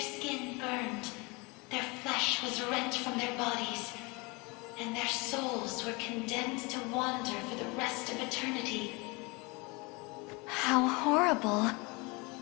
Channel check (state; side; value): quieter; right; 27.2 dB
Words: skin burned, their flesh was rent from their bodies, and their souls were condemned to wander for the rest of eternity. How horrible.